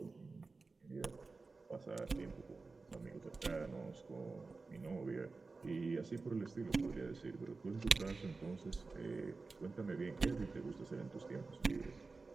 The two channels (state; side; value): quieter; left; 3.9 dB